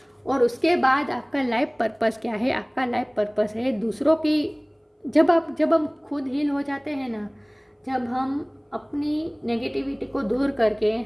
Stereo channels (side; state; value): both; identical; correlation 1.00